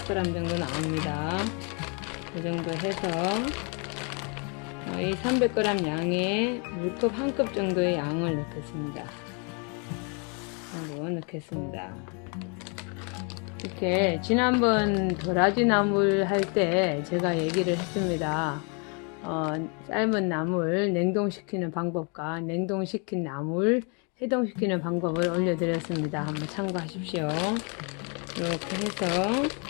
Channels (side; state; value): right; quieter; 35.9 dB